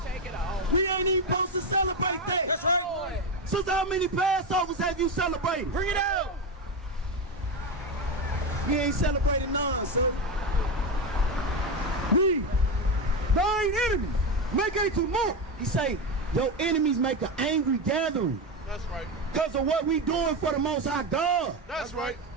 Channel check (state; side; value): normal; both; correlation 0.14